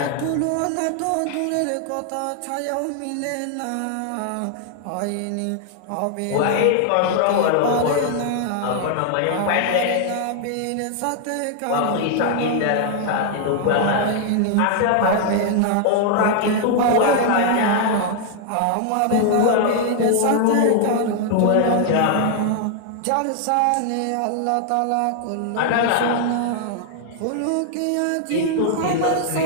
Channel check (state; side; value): different; both; correlation 0.00